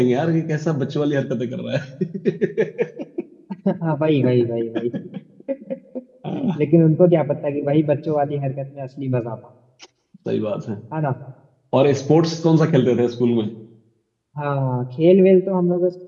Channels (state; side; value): identical; both; correlation 1.00